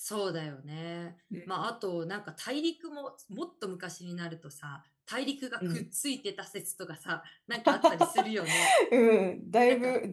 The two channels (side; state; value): both; identical; correlation 1.00